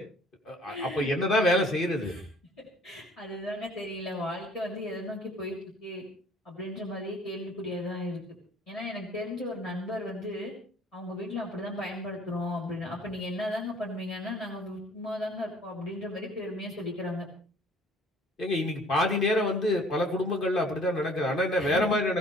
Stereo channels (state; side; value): normal; both; correlation 0.54